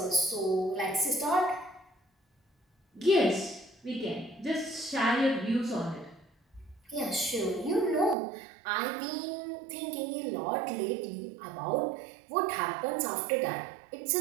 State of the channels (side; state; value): left; drops out; at 8.2 s